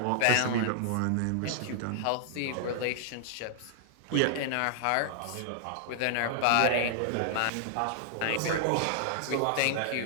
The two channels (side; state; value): both; different; correlation -0.01